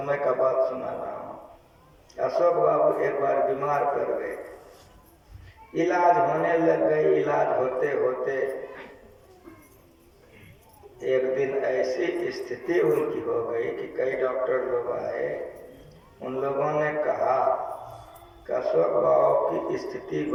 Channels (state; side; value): identical; both; correlation 1.00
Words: का बात सुना रहा हूँ। अशोक बाबू एक बार बीमार पड़ गए, इलाज होने लग गई। इलाज होते होते एक दिन ऐसी स्थिति उनकी हो गई कि कई डॉक्टर लोग आए। उन लोगों ने कहा कि अशोक बाबू की स्थिति